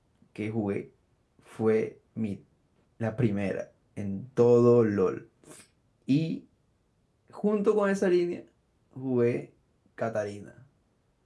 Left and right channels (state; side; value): identical; both; correlation 1.00